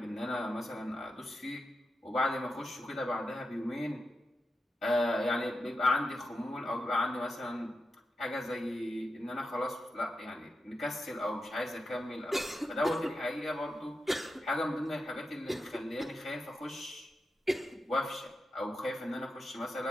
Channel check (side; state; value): both; normal; correlation 0.88